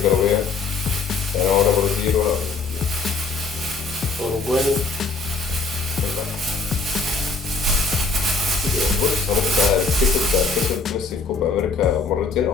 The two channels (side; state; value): right; quieter; 4.3 dB